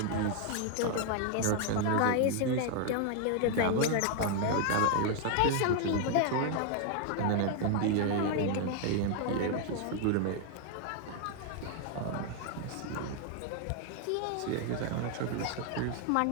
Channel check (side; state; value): both; different; correlation 0.00